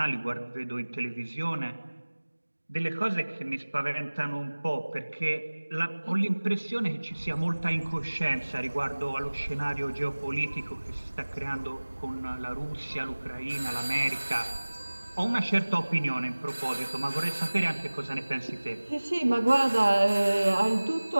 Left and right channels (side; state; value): both; inverted; correlation -1.00